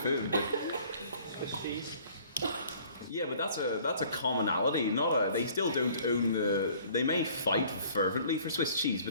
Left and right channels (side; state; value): both; inverted; correlation -0.54